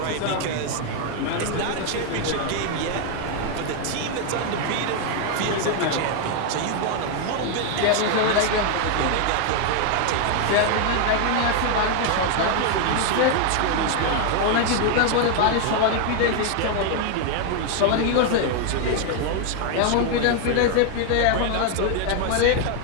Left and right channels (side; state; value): both; different; correlation 0.01